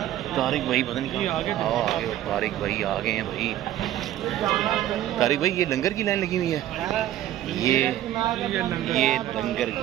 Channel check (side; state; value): left; quieter; 12.9 dB